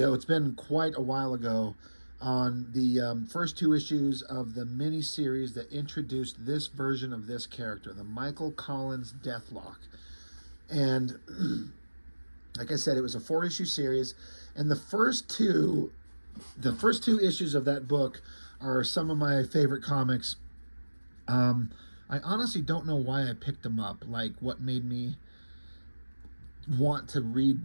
it's been quite a while ago, on the first two issues of the mini-series that introduced this version of this character, the Michael Collins Deathlock. And like I said, it was a 4-issue series, and the first two issues of that book are some of my favorite comics. I honestly don't know why I picked them up, like what made me want to read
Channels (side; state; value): both; inverted; correlation -1.00